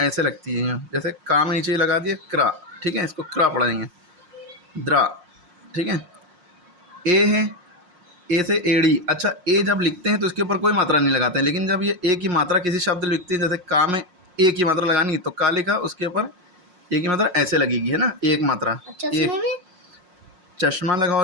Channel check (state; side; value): late; left; 5.6 ms